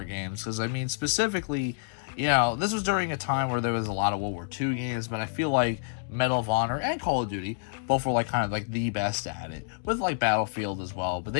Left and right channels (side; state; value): right; silent; digital silence